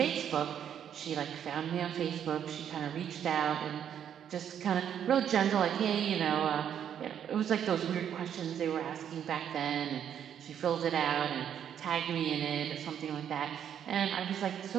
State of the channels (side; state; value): left; quieter; 9.2 dB